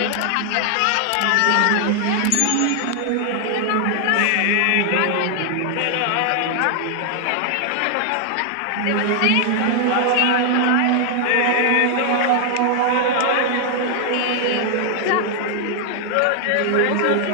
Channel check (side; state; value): both; different; correlation 0.00